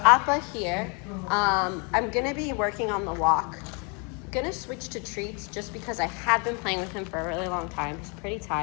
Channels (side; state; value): right; quieter; 33.6 dB